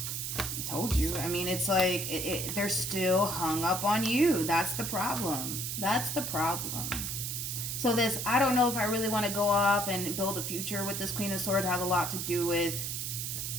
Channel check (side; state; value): right; noise; hiss, 3 dB below the sound